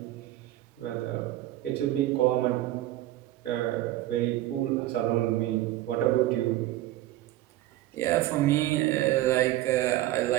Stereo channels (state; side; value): quieter; left; 15.2 dB